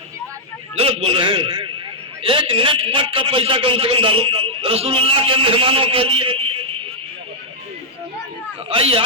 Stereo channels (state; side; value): normal; both; correlation -0.06